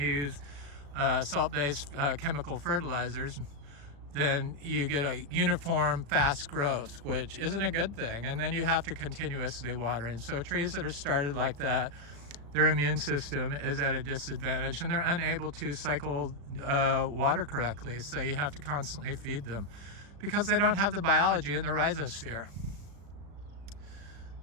use salt-based chemical fertilizers, then you get a uniform fast growth, which isn't a good thing, and then you have to continuously water. And so trees that are started like that, their immune system is at a disadvantage, and they're unable to cycle water correctly, so you have to constantly feed them because they don't have the biology in the rhizosphere.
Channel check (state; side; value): late; left; 35 ms